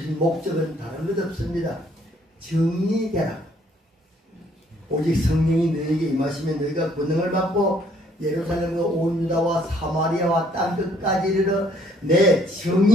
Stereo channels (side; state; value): both; normal; correlation 0.64